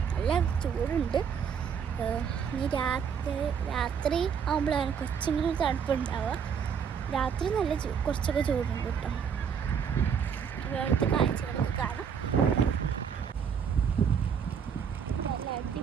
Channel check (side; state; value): left; quieter; 7.1 dB